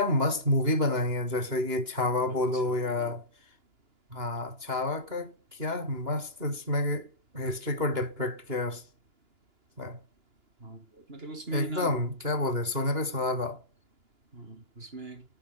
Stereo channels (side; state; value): left; late; 2.9 ms